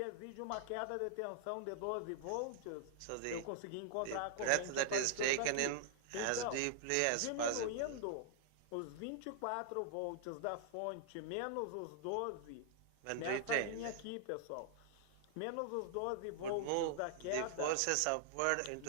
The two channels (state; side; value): different; both; correlation -0.01